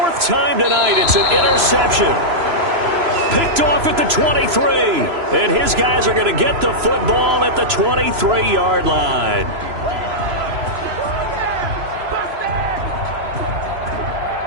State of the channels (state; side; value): late; left; 3.0 ms